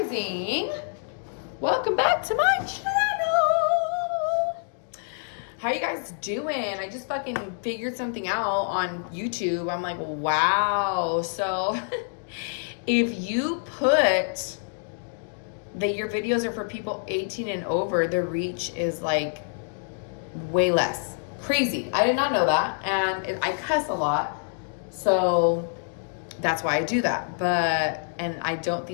Welcome back to my channel. How you guys doing? I just fucking figured something out on YouTube. I'm like, wow. So if you put that your videos are for people 18 and over, the reach is like way less. Crazy. I did not know that. And I cuss a lot. So that's why I do that. And I don't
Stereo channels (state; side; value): silent; right; digital silence